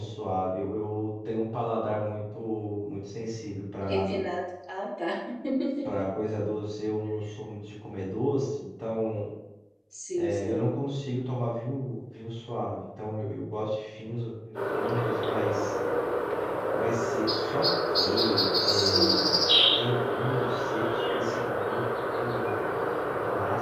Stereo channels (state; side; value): identical; both; correlation 1.00